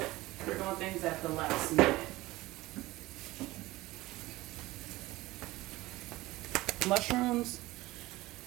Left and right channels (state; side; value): quieter; left; 18.9 dB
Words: we're doing things at the last minute. Mushrooms,